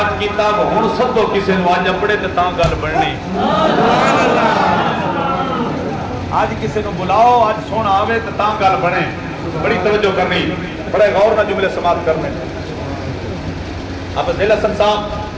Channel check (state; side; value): identical; both; correlation 1.00